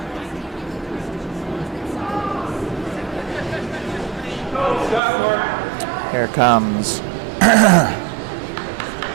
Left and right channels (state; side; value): drops out; left; at 5.0 s